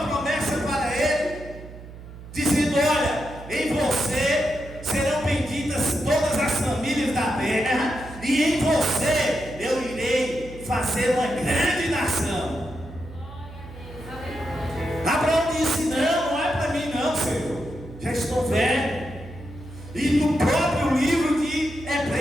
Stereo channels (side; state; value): right; noise; hum, 15 dB below the sound